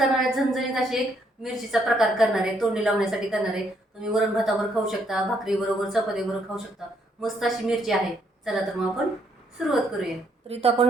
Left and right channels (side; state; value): both; normal; correlation 0.72